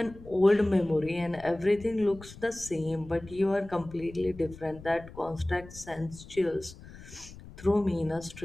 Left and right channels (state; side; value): noise; left; rumble, 18 dB below the sound